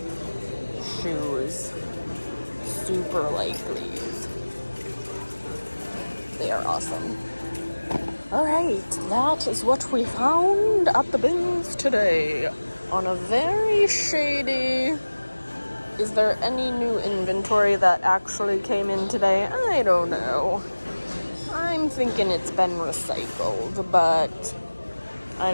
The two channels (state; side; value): inverted; both; correlation -1.00